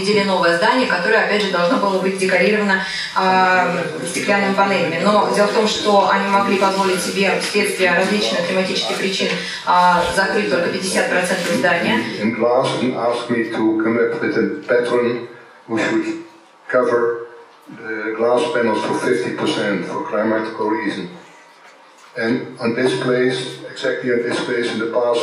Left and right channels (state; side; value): identical; both; correlation 1.00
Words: новое здание, которое, опять же, должно было быть декорировано стеклянными панелями. Но дело в том, что они могли позволить себе вследствие различных климатических причин закрыть только 50% здания. The glass panels for 50% for climatical reason. And on this place, exactly on this place in the